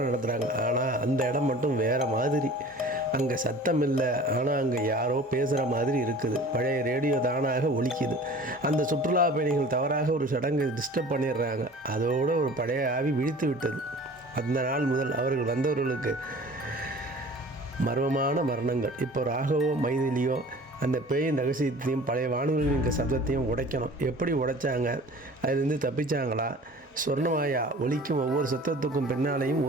நடத்துகிறாங்க. ஆனால் அந்த இடம் மட்டும் வேறு மாதிரி. அங்கே சத்தம் இல்லை, ஆனால் அங்கே யாரோ பேசுகிற மாதிரி இருக்குது. பழைய ரேடியோ தானாக ஒலிக்குது. அந்த சுற்றுலா பயணிகள் தவறாக ஒரு சடங்கு டிஸ்டர்ப் பண்ணிடுறாங்க. அதோடு ஒரு பழைய ஆவி விழித்து விட்டது. அந்த நாள் முதல் அவர்கள் வந்தவர்களுக்கு மர்மமான மரணங்கள். இப்போ ராகவோ மைதிலியோ அந்த பேயின் ரகசியத்தையும் பழைய வானொலியின் சத்தத்தையும் உடைக்கணும். எப்படி உடைச்சாங்க? அதிலிருந்து தப்பிச்சாங்களா? சொர்ணமாயா ஒலிக்கும் ஒவ்வொரு சத்தத்துக்கும் பின்னாலேயும்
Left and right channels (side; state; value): both; normal; correlation 0.44